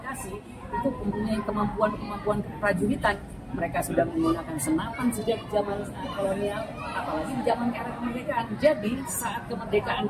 itu mempunyai kemampuan keprajuritan. Mereka sudah menggunakan senapan sejak zaman kolonial, apalagi di zaman era kemerdekaan. Jadi saat kemerdekaan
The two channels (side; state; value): both; identical; correlation 1.00